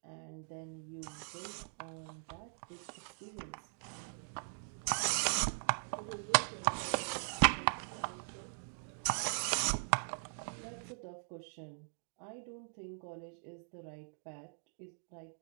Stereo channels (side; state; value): left; silent; digital silence